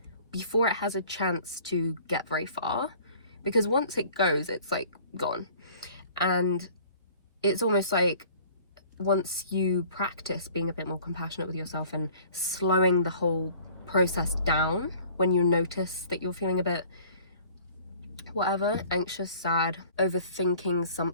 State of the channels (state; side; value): inverted; both; correlation -0.51